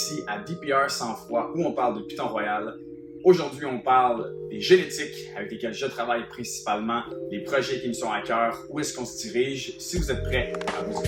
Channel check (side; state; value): both; identical; correlation 1.00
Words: à DPR 100 fois où on parle de Python Royal. Aujourd'hui on parle des génétiques avec lesquelles je travaille principalement, les projets qui me sont à cœur, où est-ce qu'on se dirige. Si vous êtes prêts, à vous